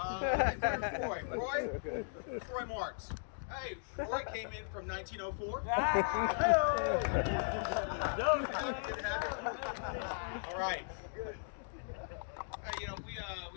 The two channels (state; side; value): silent; right; digital silence